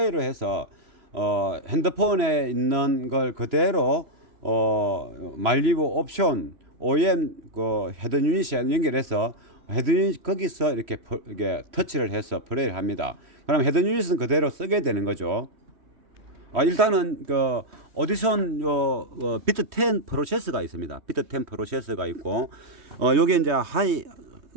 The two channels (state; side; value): late; left; 3.1 ms